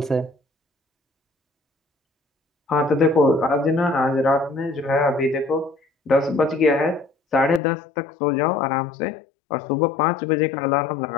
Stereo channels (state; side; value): drops out; right; at 7.6 s